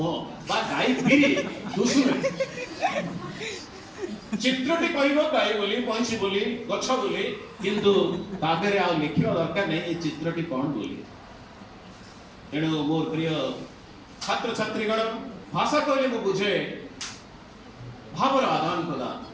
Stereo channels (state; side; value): identical; both; correlation 1.00